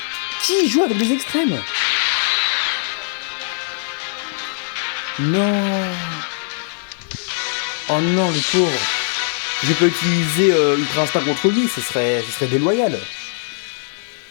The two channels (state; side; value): silent; right; digital silence